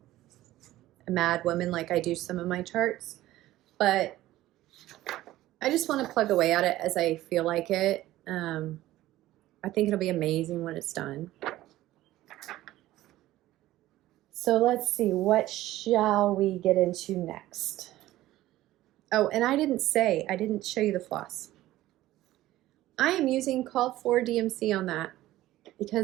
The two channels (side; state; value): left; quieter; 15.6 dB